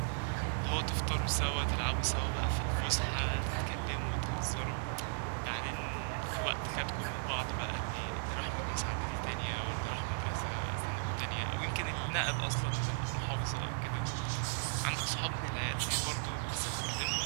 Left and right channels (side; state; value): left; silent; 54 dB below the other